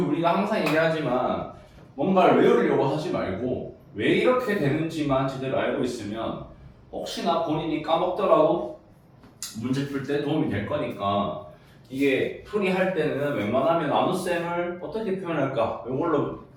항상 얘기하지만 뭔가를 외우려고 하지 말고 왜 이렇게 되는지만 제대로 알고 있으면 혹시나 본인이 까먹더라도 문제 풀 때 도움이 될 거니까 이게 풀이할 때는 웬만하면 나눗셈을 어떻게 표현할까? 이걸로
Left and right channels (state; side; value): identical; both; correlation 1.00